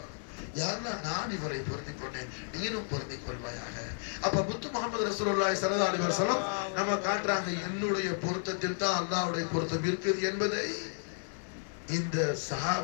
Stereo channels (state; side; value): silent; right; 56 dB below the other